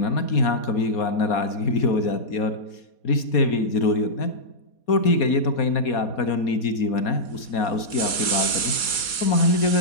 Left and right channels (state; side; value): late; right; 4.2 ms